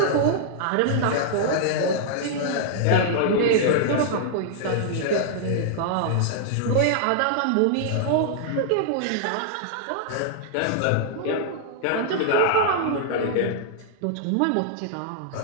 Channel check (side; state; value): both; different; correlation -0.01